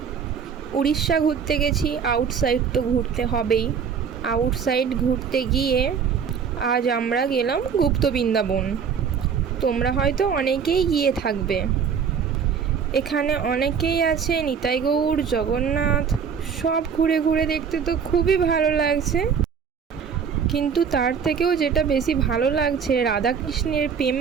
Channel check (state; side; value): quieter; left; 6.8 dB